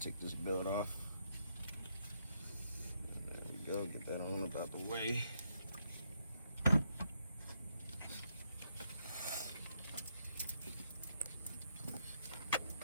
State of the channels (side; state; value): both; inverted; correlation -0.77